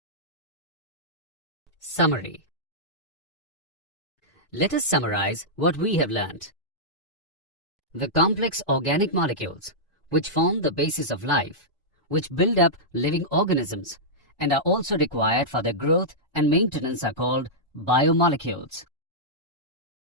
Summary. Let us summarize what we have learnt. The complex organic molecules, which form the basis of life, which build up living organisms and are also required for their growth and maintenance, are called biomolecules.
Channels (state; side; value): normal; both; correlation -0.12